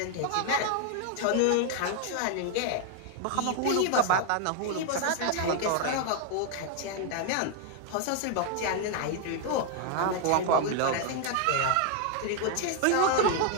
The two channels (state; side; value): different; both; correlation 0.00